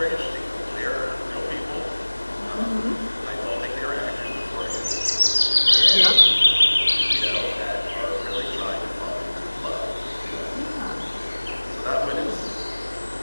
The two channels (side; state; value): both; inverted; correlation -1.00